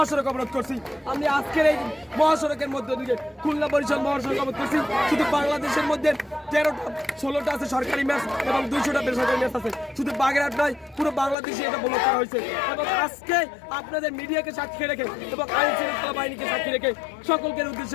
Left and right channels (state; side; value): drops out; right; at 11.4 s